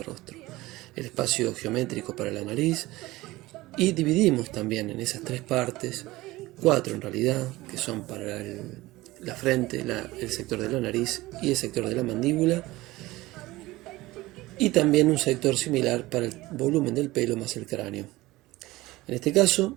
rostro, el espacio geométrico para la nariz, y dividimos también en esas 3 partes, 4 en realidad, que son para la frente, el sector de la nariz y el sector de la mandíbula, y también un sector similar para el volumen del pelo más el cráneo. En este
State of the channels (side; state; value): left; quieter; 19.0 dB